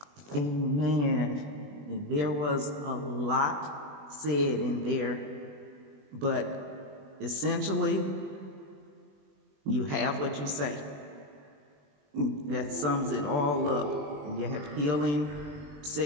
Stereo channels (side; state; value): left; late; 20 ms